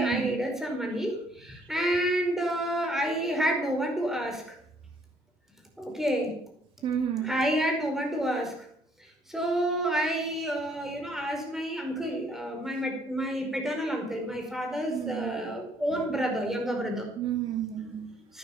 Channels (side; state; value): both; normal; correlation 0.65